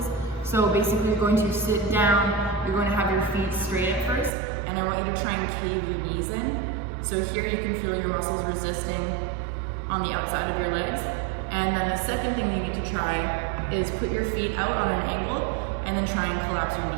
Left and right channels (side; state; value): left; drops out; at 4.3 s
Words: So basically, you're going to sit down, you're going to have your feet straight at first, and I want you to try and cave your knees in. So here you can feel your muscles resisting on the outside of your legs. And then the second thing you need to try is put your feet out on an angle, and then try and collapse your